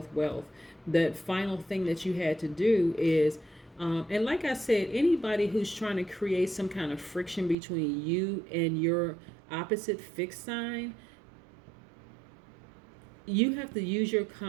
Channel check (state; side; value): drops out; left; at 7.6 s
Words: wealth. The final thing that you had to do is, and like I said, anybody who's trying to create some kind of friction between you and your opposite fixed sign, you have to use your